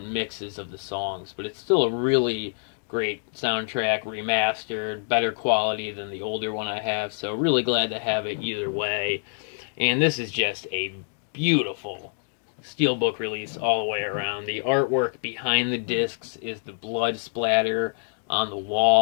mixes of the songs, but it's still a really great soundtrack, remastered, better quality than the older one I have, so really glad to have it either way. And this is just a beautiful Steelbook release all the way around. The artwork behind the discs is the blood splatter on the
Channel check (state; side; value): silent; right; digital silence